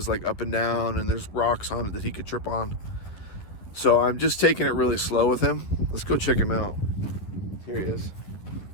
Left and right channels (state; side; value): late; right; 10 ms